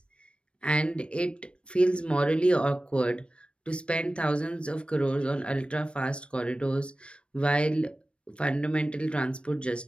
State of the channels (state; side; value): late; right; 0.058 ms